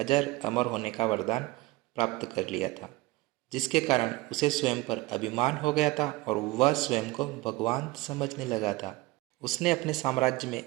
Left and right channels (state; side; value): quieter; left; 20.6 dB